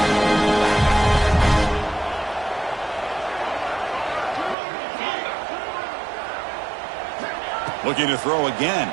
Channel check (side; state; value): left; drops out; at 4.5 s